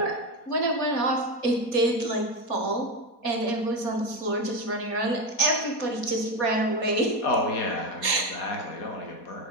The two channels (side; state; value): right; late; 4.2 ms